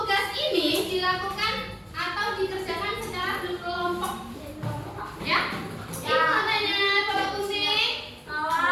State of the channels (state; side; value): identical; both; correlation 1.00